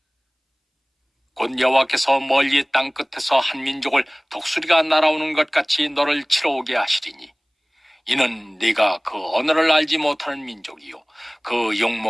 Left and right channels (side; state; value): both; identical; correlation 1.00